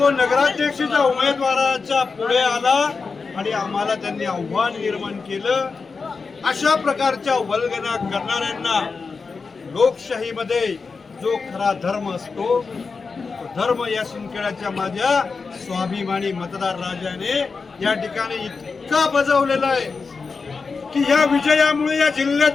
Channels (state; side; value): quieter; right; 4.7 dB